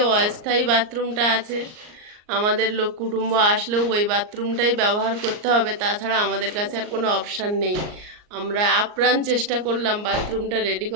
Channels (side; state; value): left; late; 38 ms